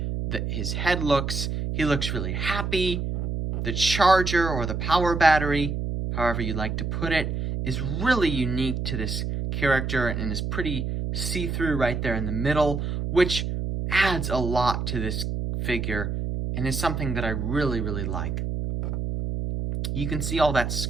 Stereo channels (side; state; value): right; noise; hum, 2 dB below the sound